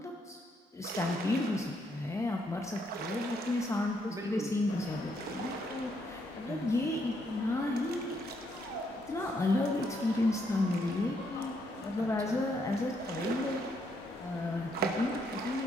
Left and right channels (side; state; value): both; normal; correlation 0.74